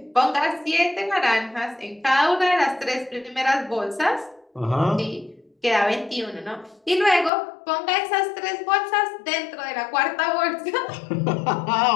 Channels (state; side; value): drops out; right; at 7.3 s